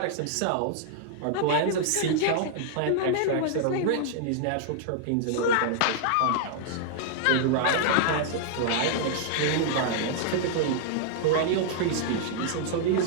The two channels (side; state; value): both; different; correlation -0.01